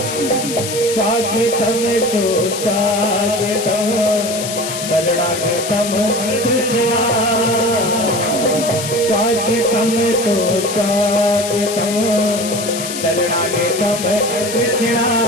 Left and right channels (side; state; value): left; noise; hiss, 6 dB below the sound